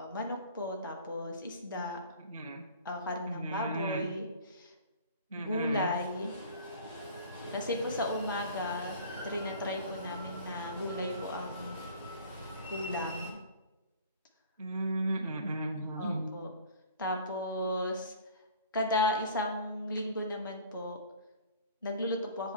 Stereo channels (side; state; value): both; inverted; correlation -0.46